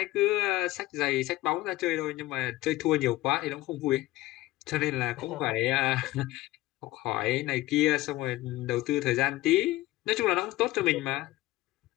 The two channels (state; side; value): quieter; right; 17.7 dB